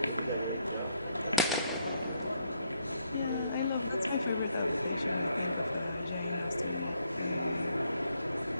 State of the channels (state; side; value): inverted; both; correlation -0.72